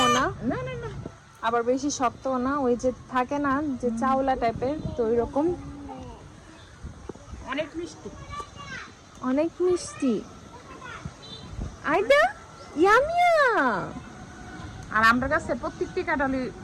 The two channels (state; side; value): identical; both; correlation 1.00